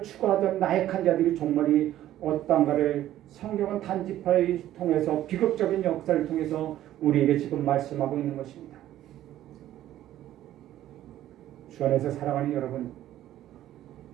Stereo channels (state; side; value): quieter; left; 13.1 dB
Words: 추구하던 나약한 자들이 종말이 어떠한가를 성경은 단지파를 통해서 비극적인 역사를 통해서 우리에게 지금 말씀하고 있는 것입니다. 주 안에서 사랑하는 여러분,